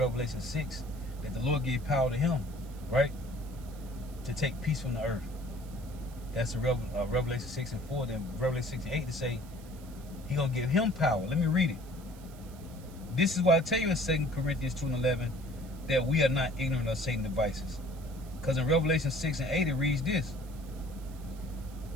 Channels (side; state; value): right; noise; hiss, 23 dB below the sound